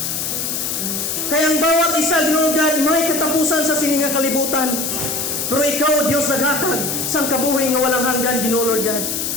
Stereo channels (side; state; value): left; noise; hiss, 2 dB below the sound